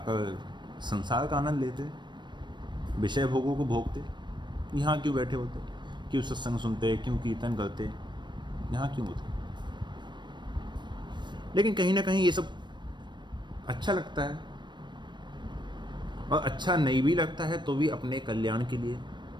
संसार का आनंद लेते, विषय भोगों को भोगते। यहाँ क्यों बैठे होते? क्यों सत्संग सुनते, क्यों कीर्तन करते, यहाँ क्यों होते? लेकिन कहीं ना कहीं ये सब अच्छा लगता है, और अच्छा नहीं भी लगता है तो भी अपने कल्याण के लिए,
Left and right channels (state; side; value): late; left; 0.22 ms